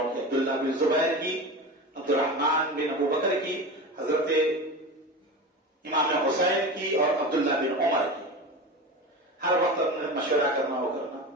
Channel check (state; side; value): normal; both; correlation 0.28